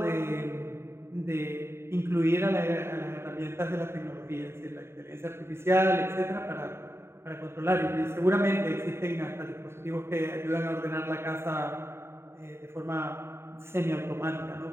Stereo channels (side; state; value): left; late; 0.12 ms